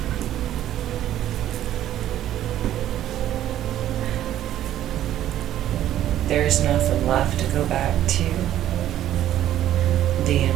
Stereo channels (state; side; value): quieter; left; 12.2 dB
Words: There's nothing left to go back to. The